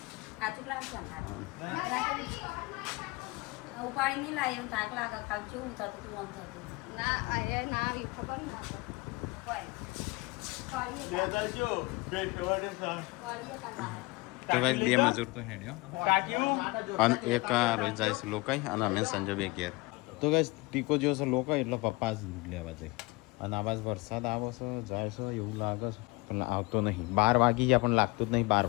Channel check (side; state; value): right; quieter; 24.3 dB